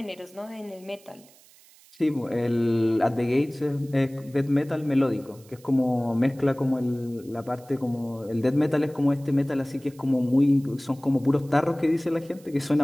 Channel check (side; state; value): right; noise; hiss, 26 dB below the sound